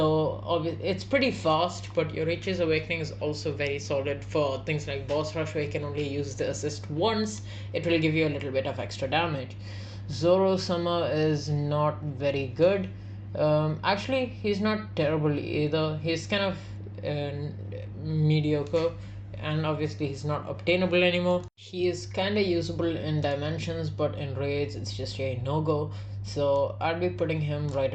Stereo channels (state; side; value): identical; both; correlation 1.00